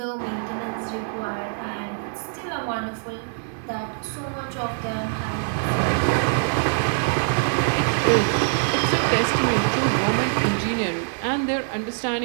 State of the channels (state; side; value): silent; left; digital silence